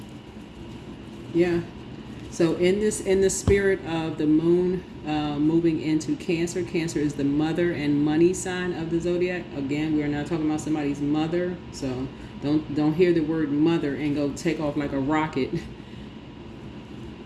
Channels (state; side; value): identical; both; correlation 1.00